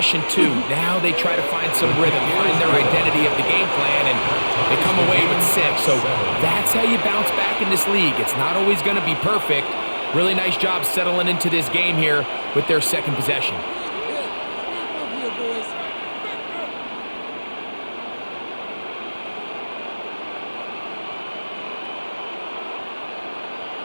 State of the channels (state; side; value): inverted; both; correlation -1.00